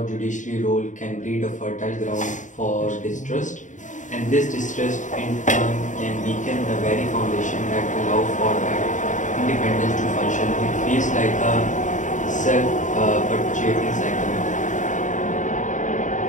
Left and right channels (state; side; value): late; right; 0.36 ms